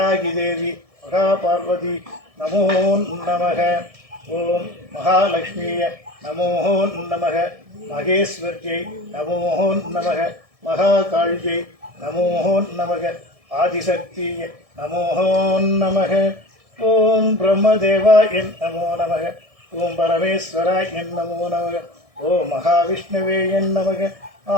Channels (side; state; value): left; late; 1.7 ms